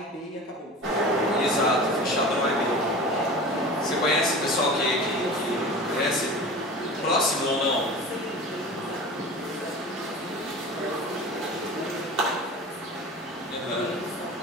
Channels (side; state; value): both; normal; correlation 0.36